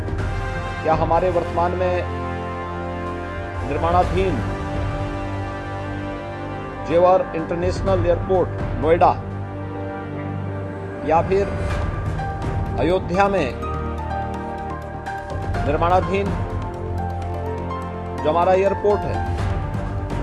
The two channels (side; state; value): both; identical; correlation 1.00